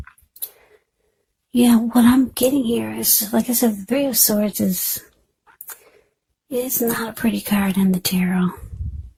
yeah, what I'm getting here is, like I said, the Three of Swords is not a pretty card in the tarot.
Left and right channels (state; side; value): identical; both; correlation 1.00